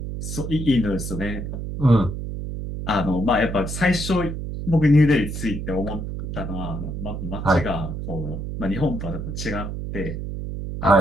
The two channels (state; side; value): noise; right; hum, 6 dB below the sound